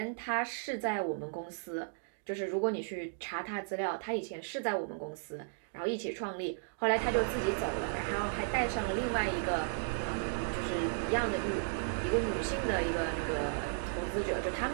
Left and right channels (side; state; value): left; silent; digital silence